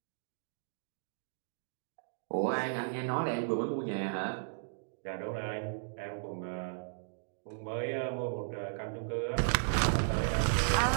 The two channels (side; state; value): left; silent; digital silence